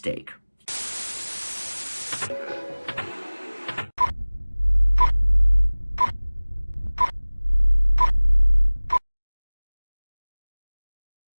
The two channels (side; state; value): both; inverted; correlation -1.00